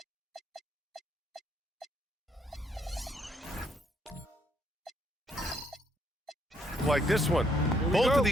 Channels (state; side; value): normal; both; correlation 0.71